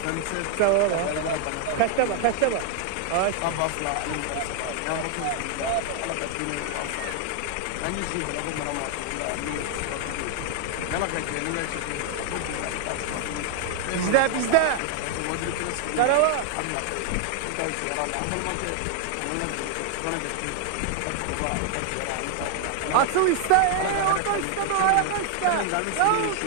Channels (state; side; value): different; both; correlation 0.00